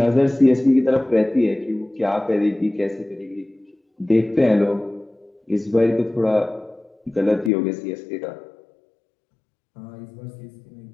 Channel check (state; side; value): drops out; right; at 7.5 s